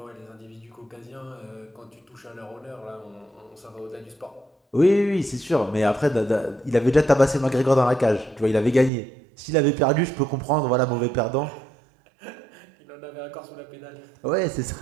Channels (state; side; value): drops out; left; at 8.9 s